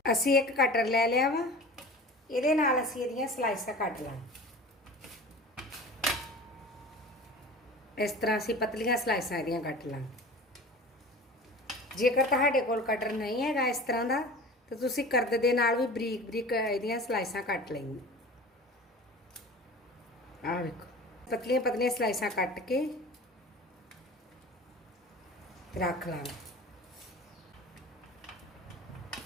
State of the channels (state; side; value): normal; both; correlation 0.38